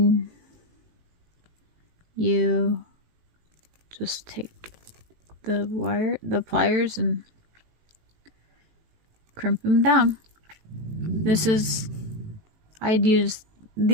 you just take the pliers and crimp them down. These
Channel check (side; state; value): left; late; 18 ms